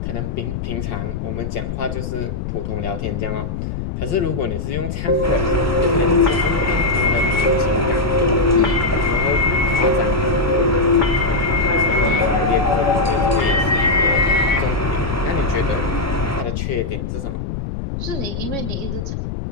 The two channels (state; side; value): noise; left; rumble, 5 dB below the sound